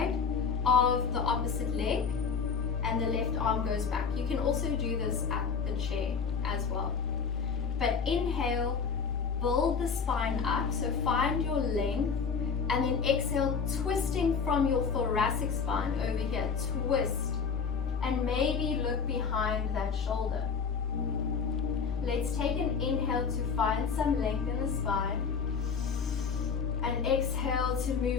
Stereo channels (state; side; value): quieter; right; 5.9 dB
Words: of the opposite leg, and the left arm goes back. You can also do this at the chair as well. But inhale, build the spine up, so find your length, and then exhale, twisting from your thoracic spine over here, twist, and maybe look behind that shoulder. Let's take an inhale to find some length in the spine, and exhale to